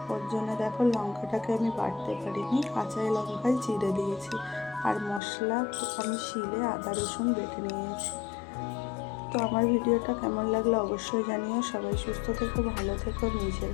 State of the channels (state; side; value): drops out; right; at 5.2 s